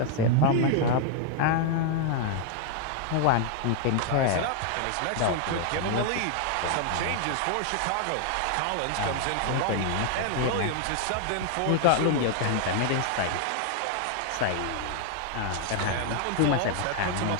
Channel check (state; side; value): different; both; correlation 0.00